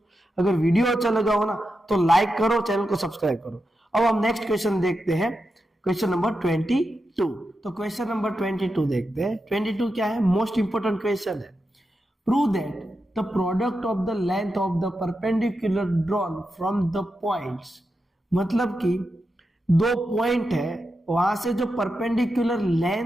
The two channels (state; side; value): normal; both; correlation 0.88